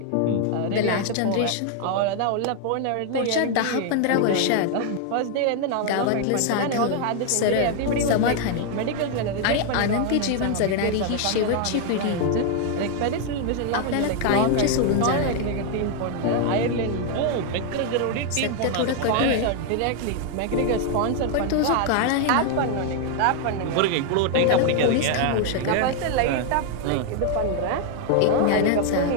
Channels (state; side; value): different; both; correlation 0.00